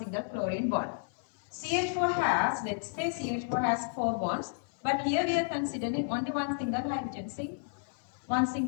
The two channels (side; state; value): right; silent; 56 dB below the other